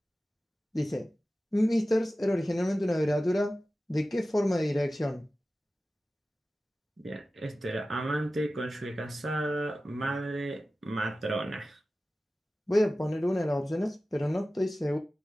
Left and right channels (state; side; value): normal; both; correlation 0.95